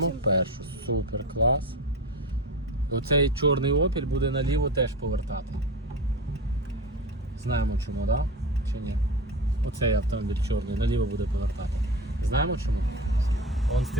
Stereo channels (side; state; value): both; normal; correlation 0.26